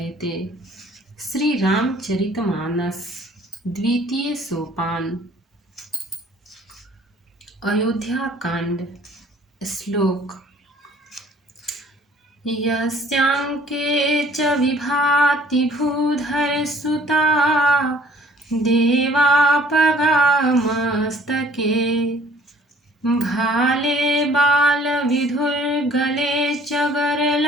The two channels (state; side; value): normal; both; correlation 0.56